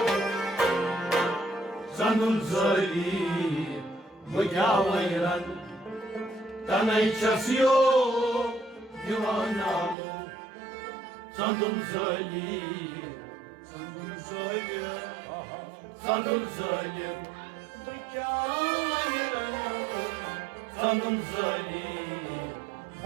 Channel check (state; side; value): drops out; left; at 10.0 s